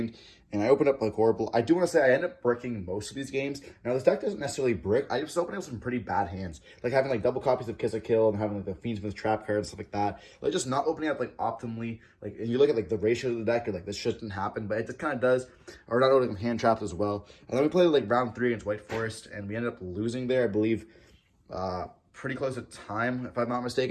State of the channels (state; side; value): identical; both; correlation 1.00